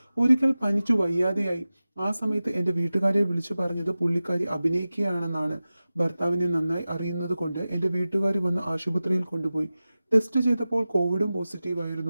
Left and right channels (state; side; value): inverted; both; correlation -0.96